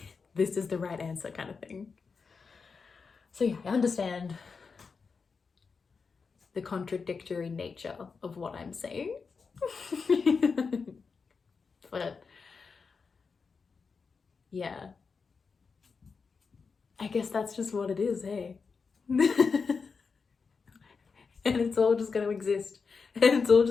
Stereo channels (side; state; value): right; quieter; 5.1 dB